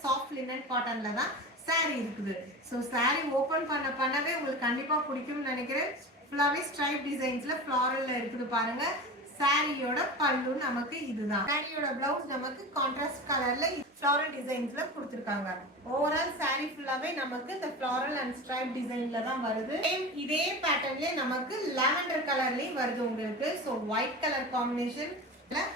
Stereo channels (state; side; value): normal; both; correlation 0.30